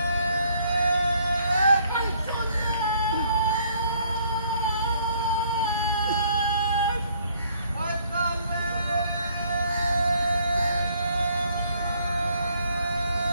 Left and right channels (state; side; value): inverted; both; correlation -0.64